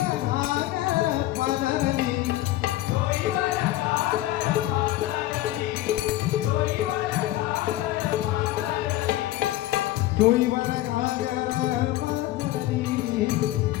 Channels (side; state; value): right; quieter; 15.8 dB